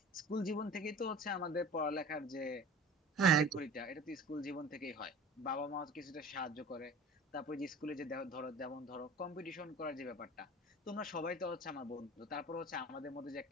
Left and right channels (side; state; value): both; normal; correlation 0.39